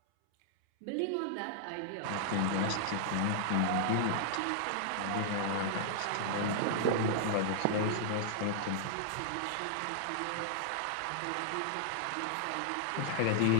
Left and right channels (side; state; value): both; different; correlation 0.00